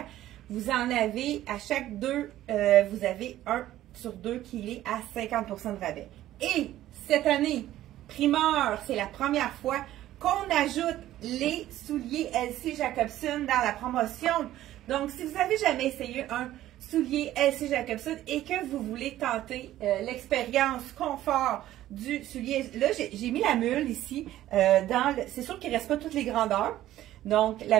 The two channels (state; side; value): quieter; left; 13.8 dB